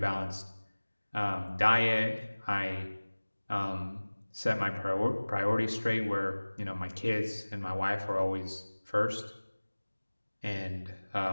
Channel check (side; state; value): both; inverted; correlation -1.00